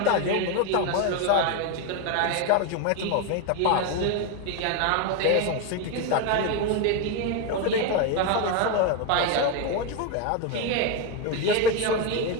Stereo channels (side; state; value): both; different; correlation 0.02